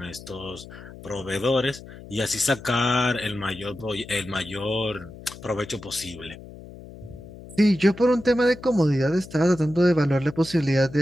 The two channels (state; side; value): noise; left; hum, 16 dB below the sound